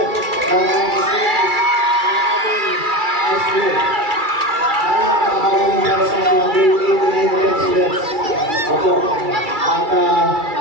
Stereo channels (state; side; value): late; left; 2.3 ms